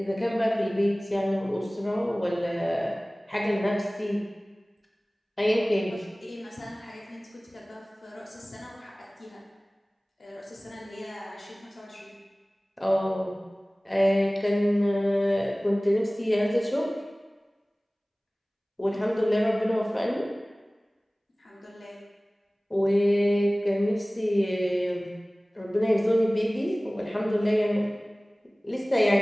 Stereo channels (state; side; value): normal; both; correlation 0.98